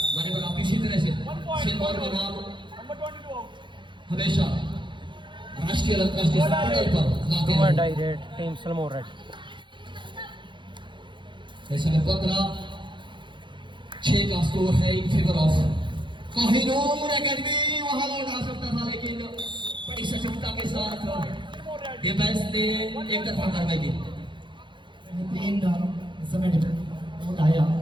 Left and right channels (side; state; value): left; late; 0.23 ms